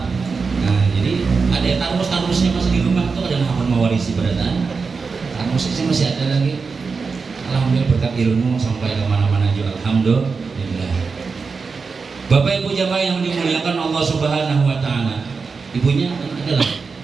Nah jadi ada tarmus-tarmusnya masih di rumah tuh ada hafal mewarisi berataan tarmusnya masih ada lagi. Alhamdulillah berkat ilmu sampai kemana-mana juga alhamdulillah. Bapak Ibu jamaah yang dimuliakan Allah Subhanahu Wa Taala, ibunya adalah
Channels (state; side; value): quieter; left; 4.9 dB